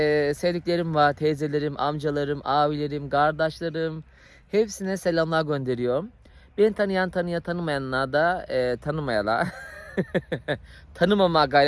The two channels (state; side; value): identical; both; correlation 1.00